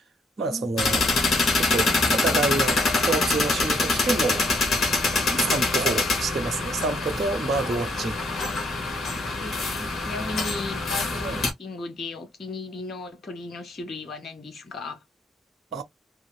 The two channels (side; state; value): both; normal; correlation 0.70